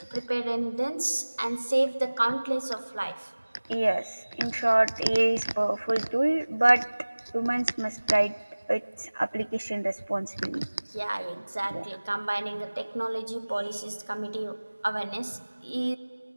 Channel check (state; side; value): inverted; both; correlation -1.00